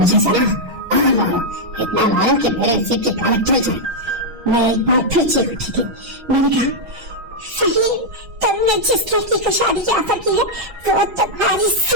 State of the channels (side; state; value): left; late; 6.3 ms